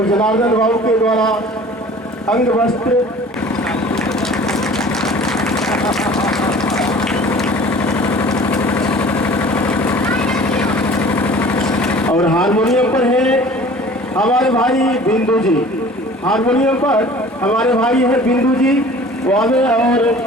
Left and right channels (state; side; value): normal; both; correlation 0.46